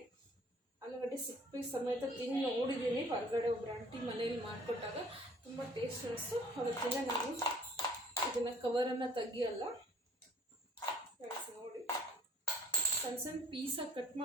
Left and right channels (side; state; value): both; normal; correlation 0.54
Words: ಆಲೂಗಡ್ಡೆ ಸಿಪ್ಪೆ ಸಮೇತ ತಿಂದು ನೋಡಿದ್ದೀನಿ. ಹೊರಗಡೆ ಒಬ್ಬರು ಆಂಟಿ ಮನೇಲಿ ಮಾಡಿಕೊಟ್ಟಾಗ ತುಂಬ ಟೇಸ್ಟ್ ಅನಿಸ್ತು. ಅದಕ್ಕಿಂತ ನಾನು ಇದನ್ನು ಕವರನ್ನು ತೆಗಿಯಲ್ಲ. ನೋಡಿ, ಸಣ್ಣ ಸಣ್ಣ ಪೀಸಾಗಿ ಕಟ್